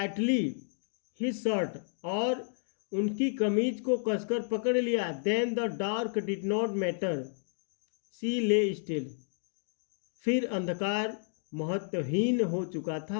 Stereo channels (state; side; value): silent; right; digital silence